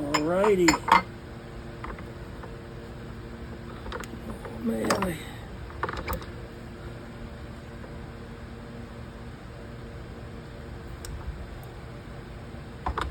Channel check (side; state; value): both; identical; correlation 1.00